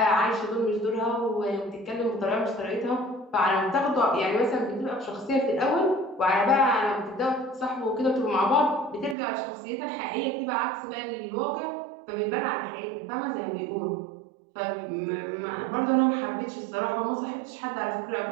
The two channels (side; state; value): left; drops out; at 9.2 s